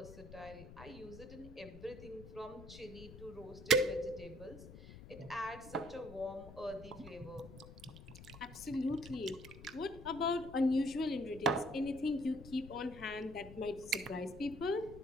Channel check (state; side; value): noise; left; rumble, 15 dB below the sound